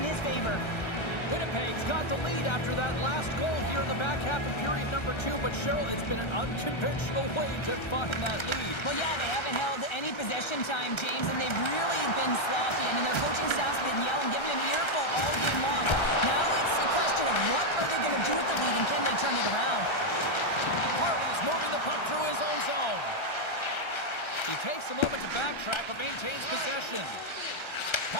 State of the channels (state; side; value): late; right; 1.3 ms